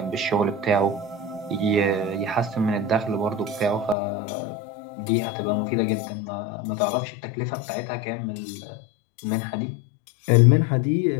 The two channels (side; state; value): right; drops out; at 4.0 s